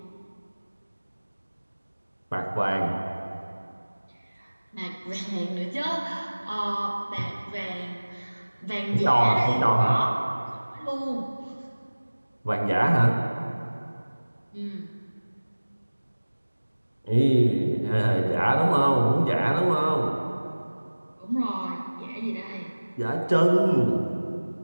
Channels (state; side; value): inverted; both; correlation -1.00